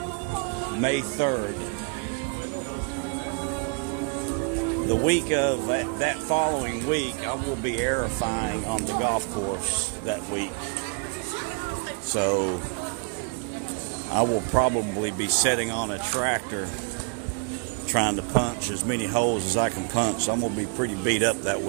May 3rd. The week of that following week, I will be aerifying on the golf course that week. So I will probably be sitting on a tractor trying to punch as many holes as I can punch. I'm going to be pretty beat up that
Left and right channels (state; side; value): quieter; left; 36.0 dB